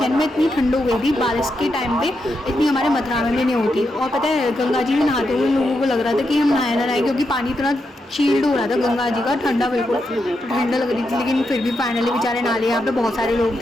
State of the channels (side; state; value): both; normal; correlation 0.84